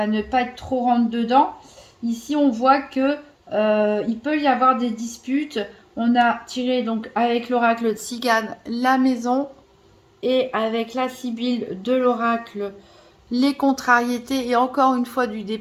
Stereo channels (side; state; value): both; identical; correlation 1.00